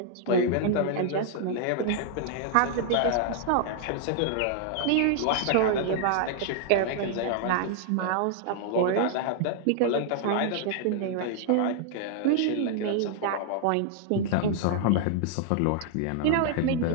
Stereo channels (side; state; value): both; different; correlation -0.01